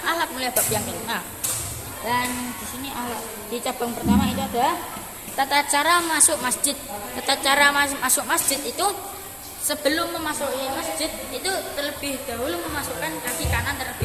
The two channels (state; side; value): identical; both; correlation 1.00